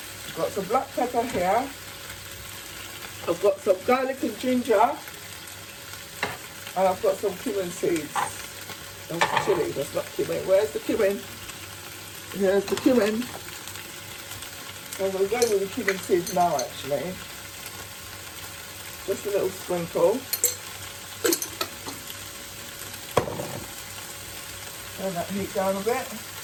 Got some black pepper here. I've got some garlic and ginger. And I've got some cumin seeds. That's chili, that's not cumin. Where's the cumin? Here's the cumin. So I'm going to go with the cumin seeds now, actually. Just a little sprinkle. Turn that heat down a bit.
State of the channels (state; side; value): identical; both; correlation 1.00